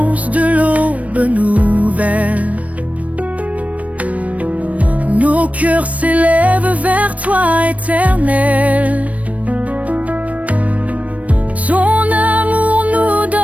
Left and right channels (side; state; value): left; late; 0.067 ms